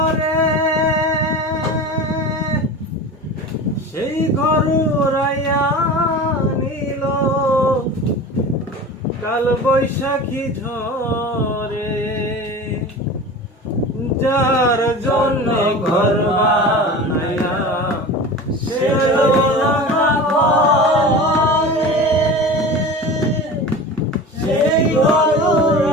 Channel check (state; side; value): normal; both; correlation 0.33